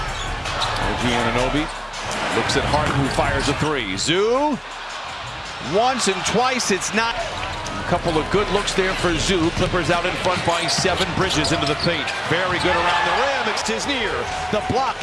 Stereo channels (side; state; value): both; identical; correlation 1.00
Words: OG Anunoby looks at Harden, who fires a three. Zoo, once and twice, it's not. A couple of good looks there for Zoo. Clippers out in front by 7. Bridges into the paint. Very good around the rim. It's his near. The block